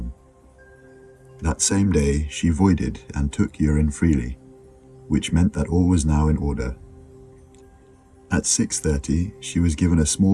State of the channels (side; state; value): both; identical; correlation 1.00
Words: That same day she voided and took urine freely, which meant that all was now in order. At 6:30 she was given a